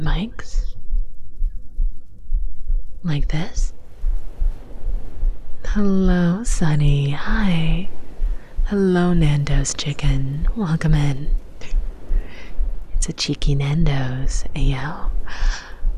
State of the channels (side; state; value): both; identical; correlation 1.00